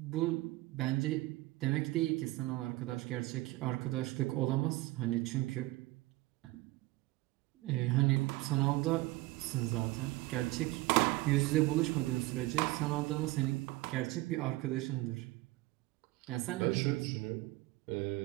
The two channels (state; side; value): quieter; left; 19.7 dB